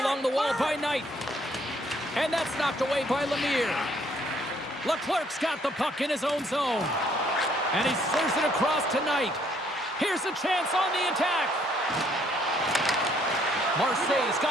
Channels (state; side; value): normal; both; correlation 0.66